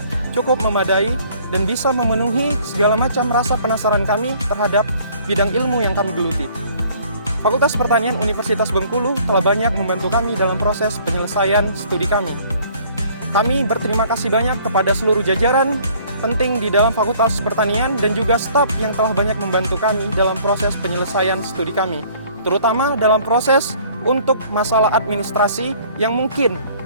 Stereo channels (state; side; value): inverted; both; correlation -0.57